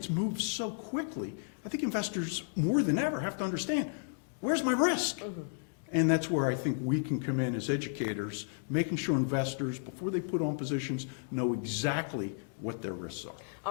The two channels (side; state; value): right; silent; digital silence